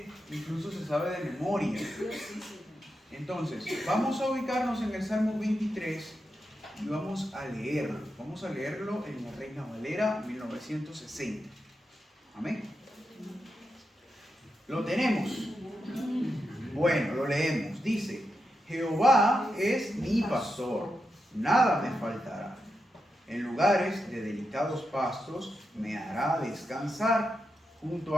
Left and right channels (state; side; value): normal; both; correlation 0.87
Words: incluso se sabe de memoria. Entonces, vamos a ubicarnos en el Salmo 23 y vamos a leerlo. Vamos a leerlo en la Reina Valera 1960. Amén. ¿Lo tenemos? Bueno, lo leemos. Dice: Jehová es mi pastor, nada me faltará. En lugares de delicados pastos me hará descansar, junto